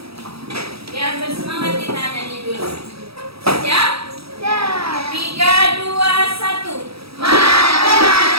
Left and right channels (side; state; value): left; late; 0.77 ms